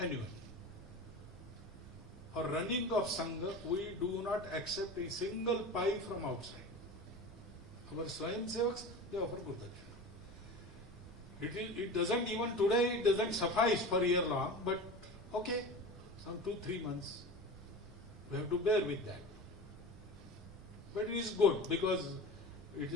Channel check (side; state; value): left; noise; rumble, 26 dB below the sound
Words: For running of Sangha, we do not accept a single pie from outside. Our Swayamsevaks, they offer Guru Dakshina. It doesn't even today, it doesn't suffice for a year long, but okay, some 2-3 months, we have to bear with that. But it is good because it